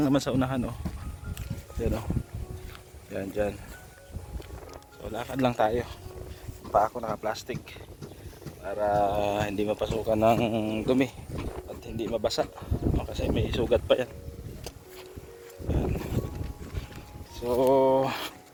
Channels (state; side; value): identical; both; correlation 1.00